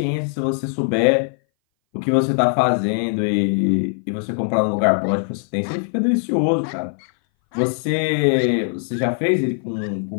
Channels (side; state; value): right; silent; 60 dB below the other